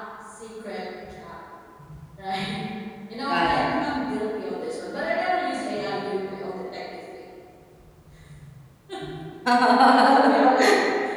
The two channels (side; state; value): both; identical; correlation 1.00